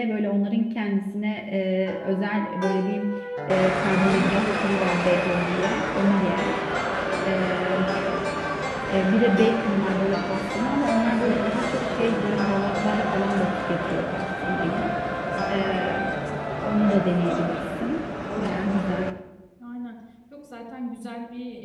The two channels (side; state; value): both; identical; correlation 1.00